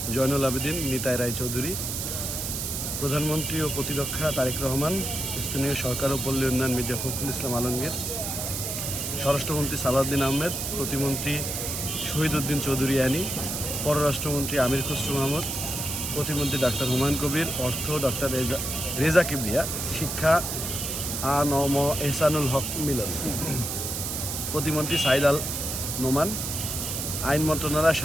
Zainul Abedin Nitai Roychowdhury, প্রধানমন্ত্রী ও প্রতিরক্ষা তারেক রহমান, স্থানীয় সরকার ও পল্লী উন্নয়ন মির্জা ফখরুল ইসলাম আলমগীর, স্বরাষ্ট্রমন্ত্রী সালাউদ্দিন আহমেদ, প্রতিমন্ত্রী শহীদ উদ্দিন চৌধুরী আনি, পররাষ্ট্রমন্ত্রী আমির খসরু মাহমুদ, প্রতিমন্ত্রী ডাক্তার হুমায়ুন কবির, অর্থ ডক্টর রেজা কিবরিয়া, শিক্ষা আ.ন.ম এহসানুল হক মিলন, প্রতিমন্ত্রী সাইদ আল নোমান, আইন মন্ত্রণালয়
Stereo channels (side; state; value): right; noise; hiss, 3 dB below the sound